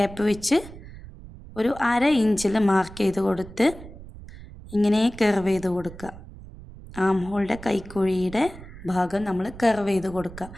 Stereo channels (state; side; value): noise; right; rumble, 16 dB below the sound